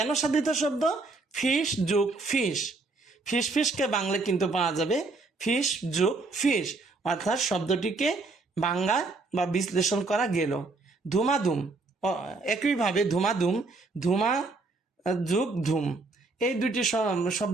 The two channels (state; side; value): quieter; left; 3.6 dB